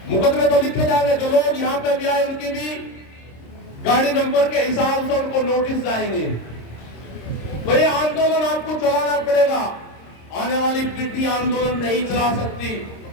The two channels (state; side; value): late; right; 26 ms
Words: मुकदमे तो लिखे जाएंगे, जो लोग यहां पे भी आए उनकी भी गाड़ी नंबर के हिसाब से उनको नोटिस जाएंगे। तो ये आंदोलन आपको चलाना पड़ेगा। आने वाली पीढ़ी आंदोलन नहीं चला सकती।